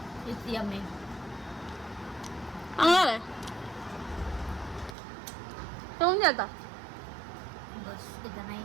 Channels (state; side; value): drops out; left; at 5.0 s